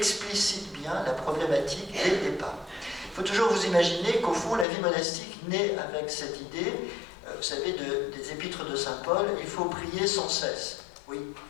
bien la problématique dès le départ. Il faut toujours vous imaginer qu'au fond, la vie monastique naît avec cette idée, vous savez, des épîtres de Saint Paul, il faut prier sans cesse. Oui,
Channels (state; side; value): drops out; right; at 4.7 s